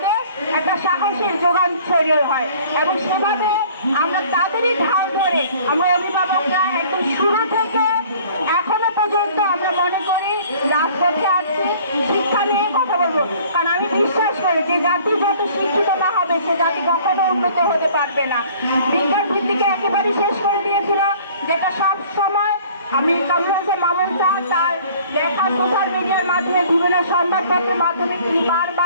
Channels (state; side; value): inverted; both; correlation -0.52